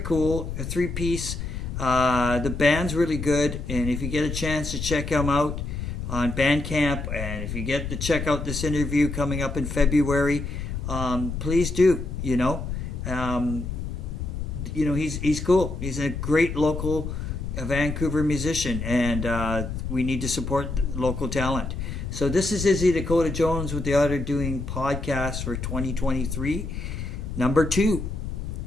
A 3-piece. The band's really good, and if you get a chance to check him out on Bandcamp, and if you get to check out this interview coming up in February, please do. He's cool. He's a great local Vancouver musician, and we need to support local talent. So this is Izzy Dakota Jones with the Otter doing podcast for 2023, number 2.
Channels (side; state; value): left; noise; rumble, 5 dB below the sound